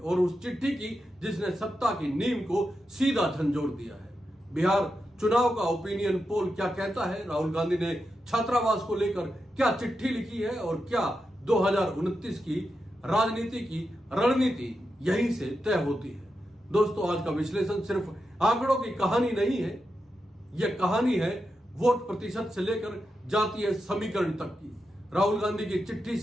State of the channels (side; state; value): both; normal; correlation 0.88